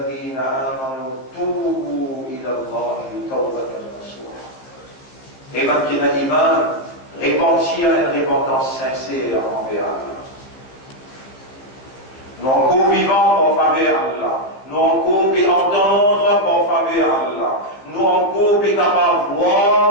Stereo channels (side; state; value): right; late; 15 ms